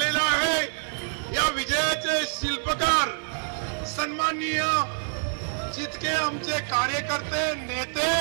आहे, या विजयाचे शिल्पकार सन्माननीय जितके आमचे कार्यकर्ते, नेते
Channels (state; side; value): silent; left; 61 dB below the other